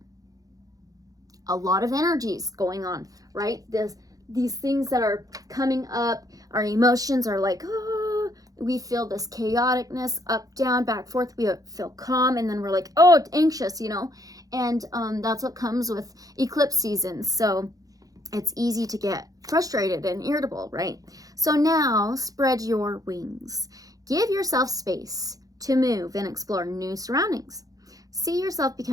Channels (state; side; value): late; left; 0.17 ms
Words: A lot of energies going on, right? These things that are coming up, our emotions are like, oh, we feel this chaoticness, up, down, back, forth. We feel calm, and then we're like, oh, anxious, you know? And that's what comes with eclipse season. So it's easy to get frustrated and irritable, right? So now spread your wings. Give yourself space to move and explore new surroundings. See yourself